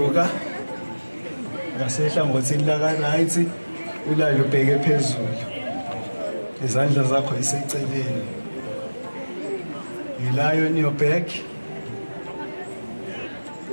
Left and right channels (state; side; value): inverted; both; correlation -1.00